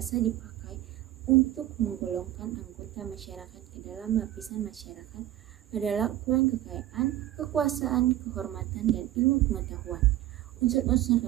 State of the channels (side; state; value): left; quieter; 13.9 dB